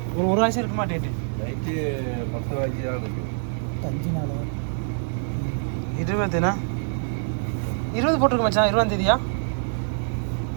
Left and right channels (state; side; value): silent; left; 62 dB below the other